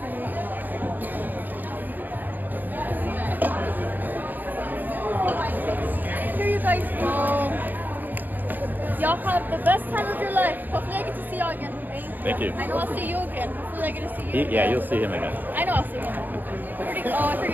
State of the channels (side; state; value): left; late; 0.087 ms